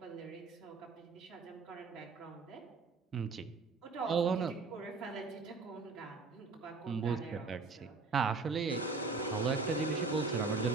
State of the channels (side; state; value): left; quieter; 4.3 dB